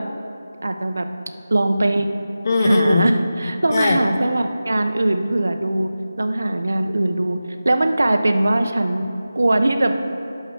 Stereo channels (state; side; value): inverted; both; correlation -0.95